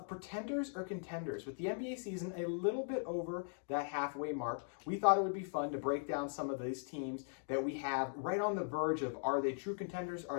Pretenders or Contenders. With the NBA season a little bit over that halfway mark, we thought it would be fun to break down some of these teams that we have right on the verge of, are they true contenders,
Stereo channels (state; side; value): silent; right; digital silence